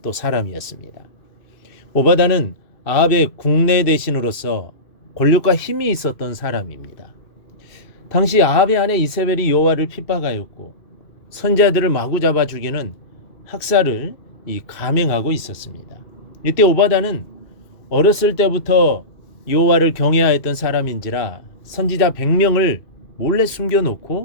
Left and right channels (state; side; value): late; right; 2.6 ms